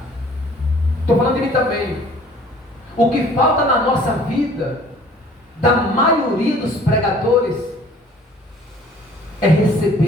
Estou falando de mim também. O que falta na nossa vida, da maioria dos pregadores, é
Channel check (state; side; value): normal; both; correlation 0.53